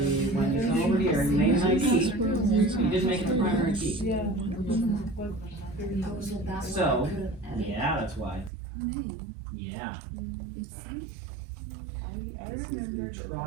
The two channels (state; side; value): drops out; left; at 8.5 s